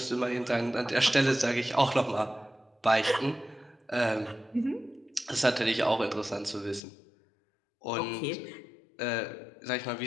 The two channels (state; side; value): drops out; right; at 6.8 s